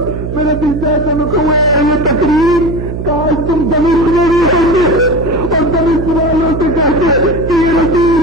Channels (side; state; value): right; noise; hum, 6 dB below the sound